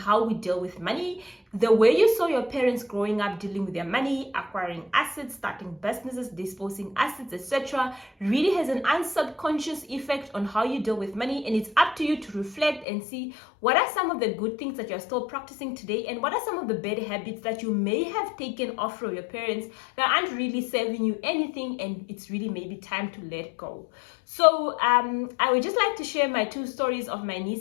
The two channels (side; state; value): right; drops out; at 12.9 s